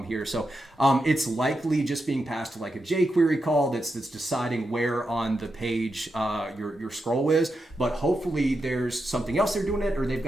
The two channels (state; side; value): normal; both; correlation 0.87